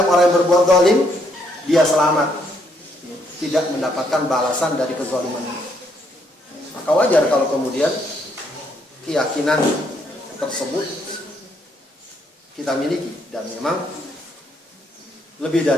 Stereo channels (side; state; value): both; normal; correlation 0.72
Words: orang yang berbuat zalim, dia selamat, tidak mendapatkan balasan dari kezalimannya. Maka wajar kalau kemudian keyakinan tersebut kita miliki, dan memang lebih